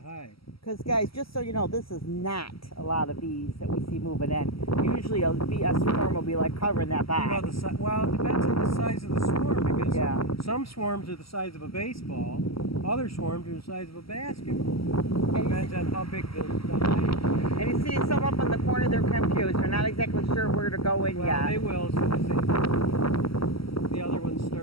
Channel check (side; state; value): right; late; 0.75 ms